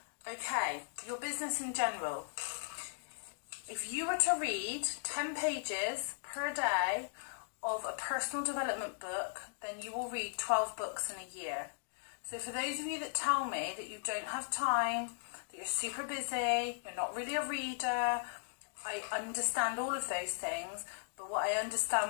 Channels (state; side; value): silent; right; digital silence